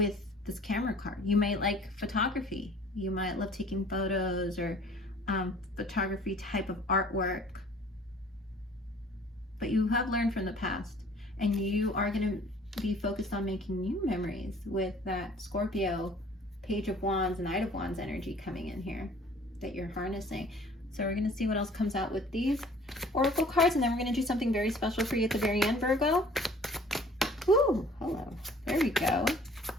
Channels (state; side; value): normal; both; correlation 0.53